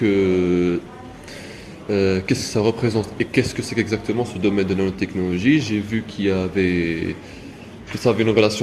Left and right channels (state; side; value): identical; both; correlation 1.00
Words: que ça représente et qu'est-ce que c'est exactement ce domaine de nanotechnologie. J'ai vu que ça avait une